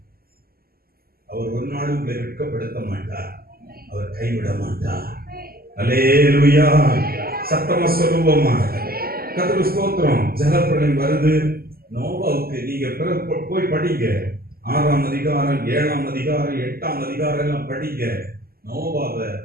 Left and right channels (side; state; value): left; late; 0.44 ms